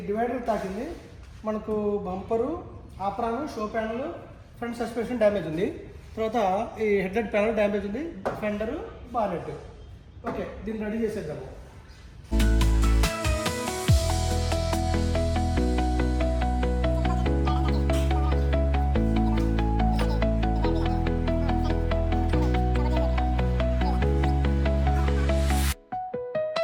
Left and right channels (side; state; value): both; identical; correlation 1.00